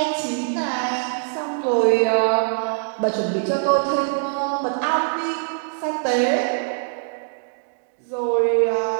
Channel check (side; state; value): left; silent; digital silence